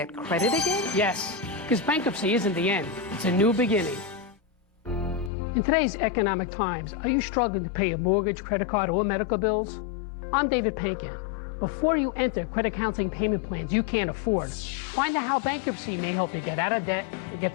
credit again? Yes, because bankruptcy isn't the end. It's a new beginning. In today's economic times, are you struggling to pay your mortgage, credit card, or medical bills? I'm David Pankin. Before you enter credit counseling payment plans you can't afford, find out how bankruptcy may help you get out of debt and get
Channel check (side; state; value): right; drops out; at 5.3 s